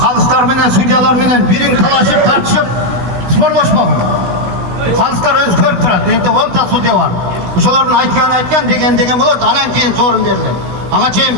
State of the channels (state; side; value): late; left; 16 ms